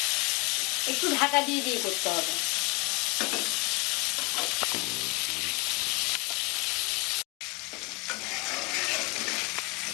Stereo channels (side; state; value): right; quieter; 28.0 dB